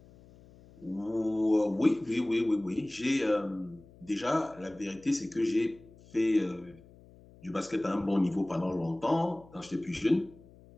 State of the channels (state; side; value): noise; left; hum, 24 dB below the sound